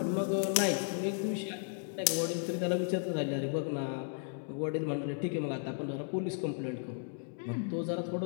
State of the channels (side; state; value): right; silent; digital silence